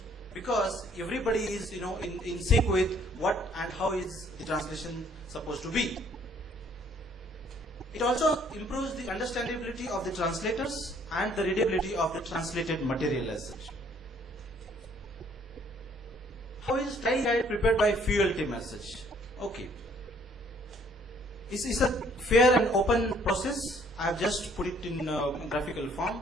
because everybody is, in sync with what and how is the translation supposed to be. It also improves the understandability of the translators and the readability of the translated material as such. How is style guide prepared by Fuel team as such? Okay. It's a fair and open process. I have just put it in graphical form.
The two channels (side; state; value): both; normal; correlation 0.62